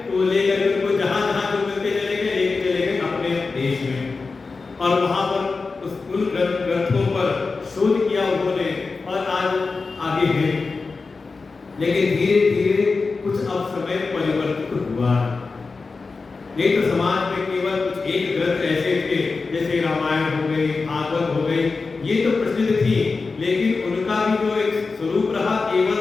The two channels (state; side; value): quieter; right; 4.2 dB